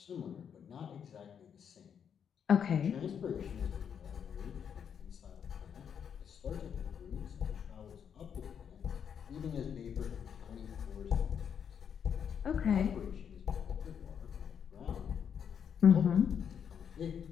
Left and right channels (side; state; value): right; quieter; 7.8 dB